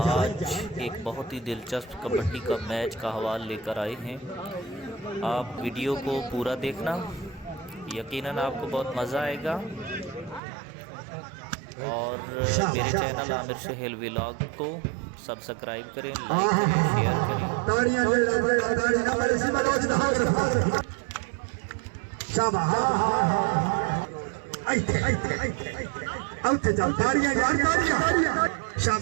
एक बहुत ही दिलचस्प कबड्डी का मैच का हवाला लेकर आए हैं। आप वीडियो को पूरा देखना, यकीनन आपको बहुत मज़ा आएगा। और मेरे चैनल आमिर सुहेल व्लॉग को सब्सक्राइब करें, लाइक करें, शेयर करें।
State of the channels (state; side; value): drops out; left; at 10.4 s